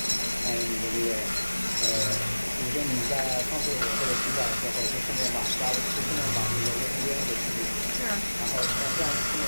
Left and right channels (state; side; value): inverted; both; correlation -1.00